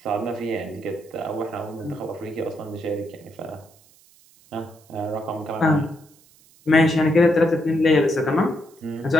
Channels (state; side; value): noise; right; hiss, 28 dB below the sound